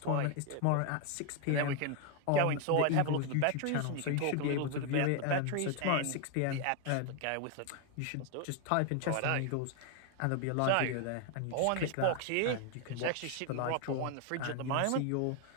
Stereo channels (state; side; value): different; both; correlation 0.01